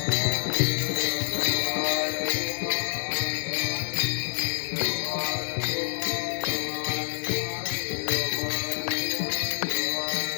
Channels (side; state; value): right; silent; digital silence